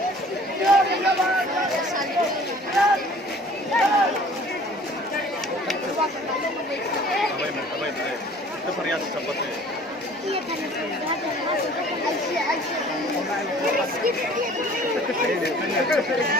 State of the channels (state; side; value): normal; both; correlation 0.50